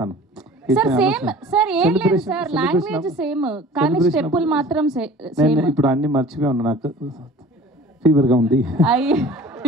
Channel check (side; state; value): both; normal; correlation 0.45